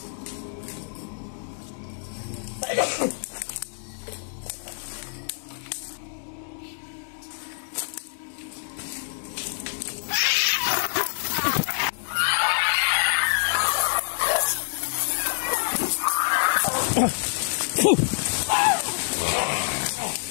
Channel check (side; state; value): right; silent; digital silence